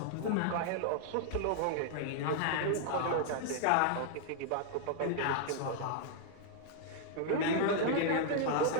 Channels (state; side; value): different; both; correlation -0.01